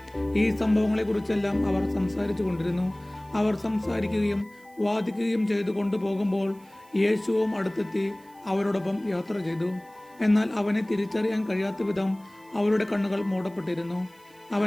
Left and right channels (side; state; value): right; noise; hiss, 29 dB below the sound